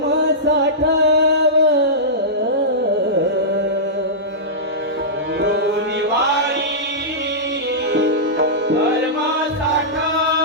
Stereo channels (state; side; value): normal; both; correlation -0.15